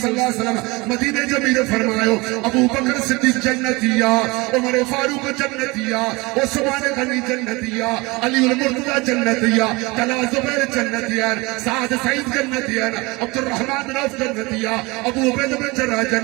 اللہ علیہ وسلم مدینہ جمیل فرمایو ابو بکر صدیق جنتیا عمر فاروق جنتیا عثمان غنی جنتیا علی المرتضی جنتیا طلحہ زبیر جنتیا سعد سعید جنتیا عبد الرحمن بن عوف جنتیا ابو عبیدہ بن جراح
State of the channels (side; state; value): left; quieter; 24.4 dB